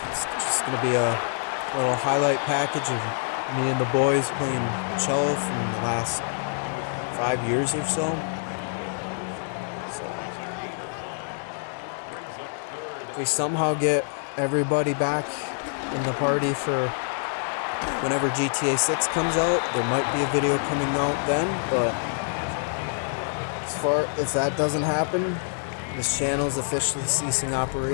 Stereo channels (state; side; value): silent; right; digital silence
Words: It's just going to be a little highlight package of me and the boys playing cello from the last 5 years or so. If we somehow get everybody back in the party for whenever GTA 6 comes out, there might be a video coming out then, but if that doesn't happen, this channel is officially ceasing